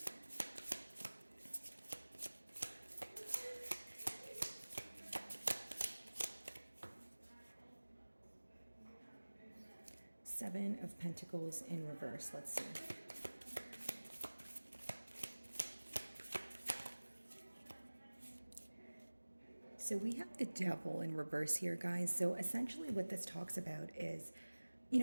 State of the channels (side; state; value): both; inverted; correlation -1.00